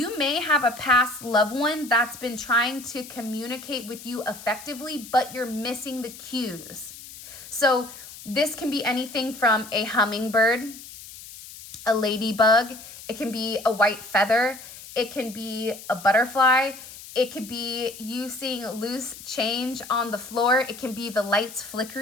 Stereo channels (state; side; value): noise; left; hiss, 15 dB below the sound